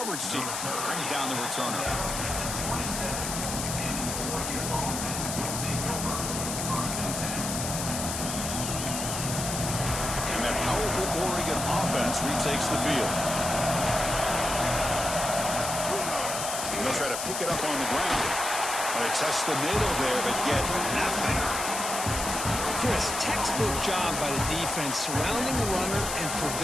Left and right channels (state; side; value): noise; left; hiss, 4 dB below the sound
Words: team brings down the returner. Powerful Oregon offense retakes the field. They'll try to pick it up on the ground. They test the middle there, but get nothing. Chris, textbook job by the defense surrounding the runner and